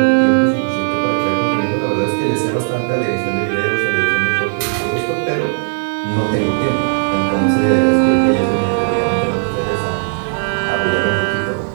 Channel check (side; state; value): left; silent; 68 dB below the other